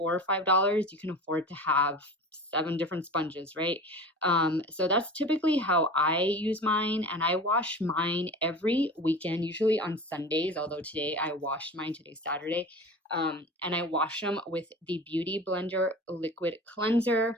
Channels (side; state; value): both; normal; correlation 0.35